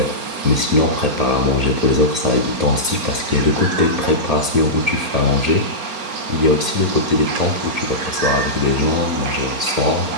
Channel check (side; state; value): left; late; 4.3 ms